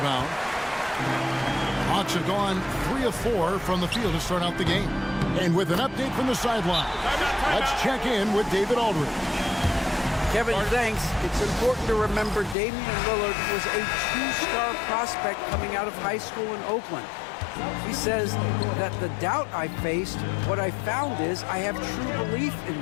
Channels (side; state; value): right; drops out; at 12.6 s